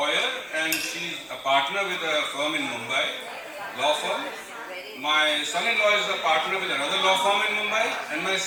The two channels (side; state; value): both; identical; correlation 1.00